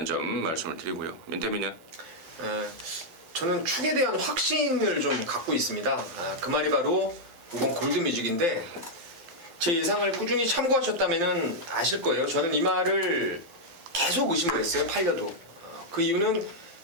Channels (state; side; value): late; left; 8.2 ms